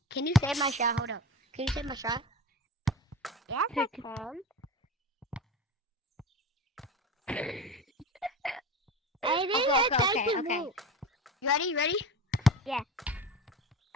Can you save my shot? Hold up. Can you save my shot? Yes, I can. Okay. You ready? Yeah.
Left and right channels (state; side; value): normal; both; correlation 0.31